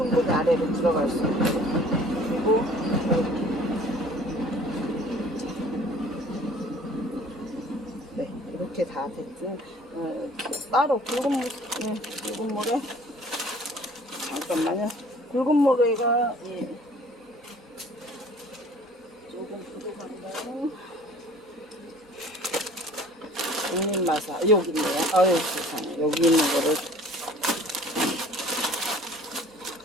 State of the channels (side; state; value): both; normal; correlation 0.50